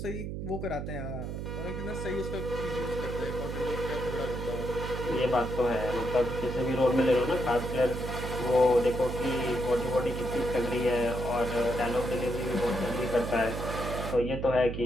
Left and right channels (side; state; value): right; noise; hum, 5 dB below the sound